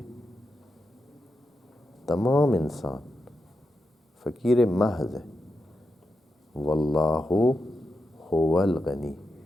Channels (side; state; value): both; normal; correlation 0.87